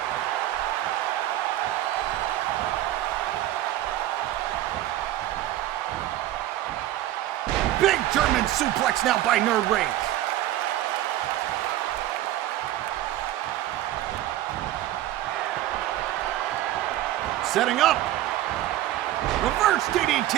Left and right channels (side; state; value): left; quieter; 14.2 dB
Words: Big German suplex now by Nerd Rage. Setting up. Reverse